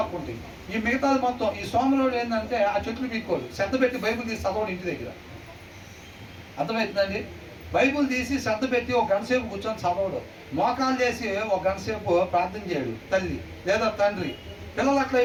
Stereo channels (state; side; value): identical; both; correlation 1.00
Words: ఈ మిగతాది మొత్తం ఈ సోమరుడు ఏంటంటే ఆ చెట్లు పీక్కోడు, శ్రద్ధ పెట్టి బైబిల్ తీసి చదవడం ఇంటి దగ్గర. అర్థమవుతుందండి. బైబుల్ తీసి శ్రద్ధ పెట్టి ఒక గంట సేపు కూర్చొని చదవడు, మోకాలు చేసి ఒక గంట సేపు ప్రార్థన చేయడు తల్లి లేదా తండ్రి. పిల్లలు అట్లా